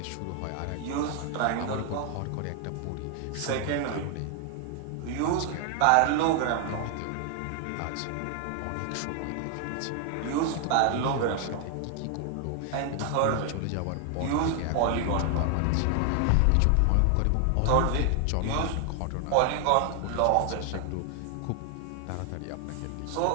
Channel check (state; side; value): different; both; correlation 0.00